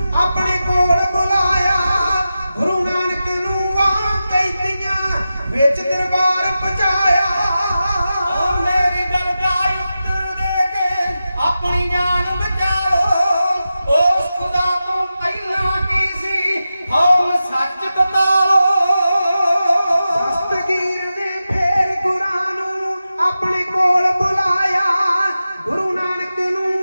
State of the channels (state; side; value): inverted; both; correlation -0.92